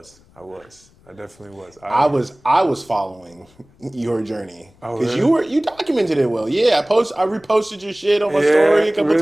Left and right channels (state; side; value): noise; left; rumble, 30 dB below the sound